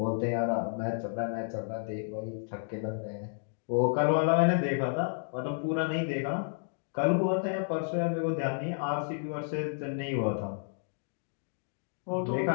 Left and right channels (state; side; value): silent; right; digital silence